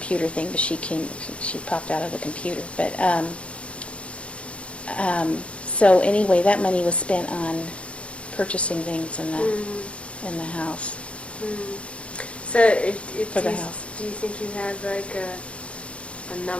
thing, but she popped out of the computer. But, so anyway, that money was spent on purchasing things in the house. So for the house. Do you think you had like a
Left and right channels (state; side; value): late; right; 0.061 ms